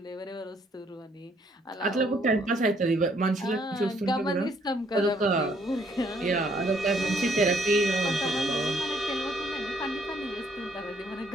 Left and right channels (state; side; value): normal; both; correlation 0.67